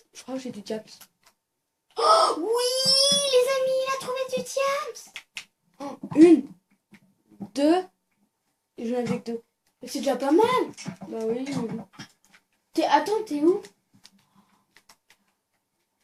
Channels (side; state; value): both; identical; correlation 1.00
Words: Je crois que j'ai du diaps. Oh oui, les amis, il a trouvé du diams. Une, deux, et j'en avais que deux. C'est déjà pas mal. Bah oui, mais bon. Attends, t'es où?